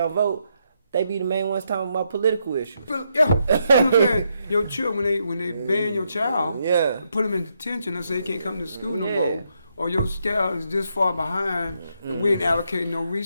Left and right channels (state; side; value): inverted; both; correlation -0.79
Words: vote, they be the main ones talking about political issues. Yeah, your children when they ban your child, put them in detention and say they can't come to school no more. Or your child is this far behind, and we ain't allocating no